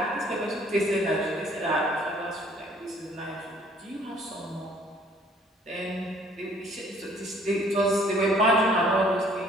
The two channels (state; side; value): normal; both; correlation 0.59